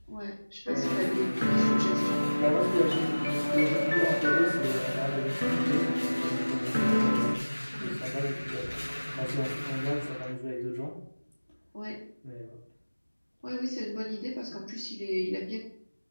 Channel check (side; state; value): both; inverted; correlation -1.00